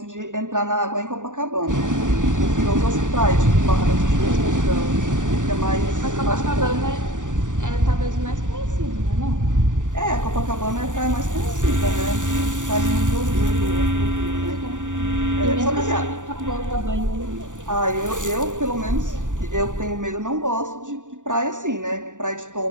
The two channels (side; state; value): left; late; 0.86 ms